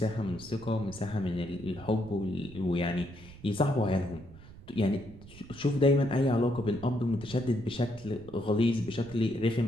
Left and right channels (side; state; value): right; noise; rumble, 18 dB below the sound